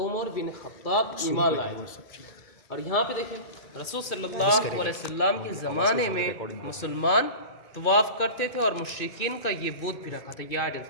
بن خطاب ایمان لائے. اور یہاں پہ دیکھیں رسول صلی اللہ علیہ وسلم کے زمانے میں مسلمان طواف کرتے تھے، اور مشرکین کا یہ بت بھی رکھا تھا، یہ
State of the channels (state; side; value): late; right; 2.4 ms